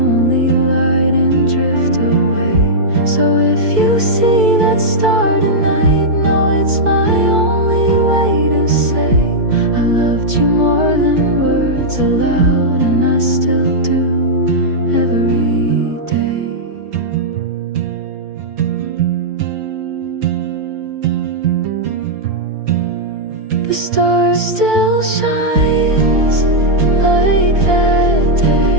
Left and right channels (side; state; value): left; late; 4.5 ms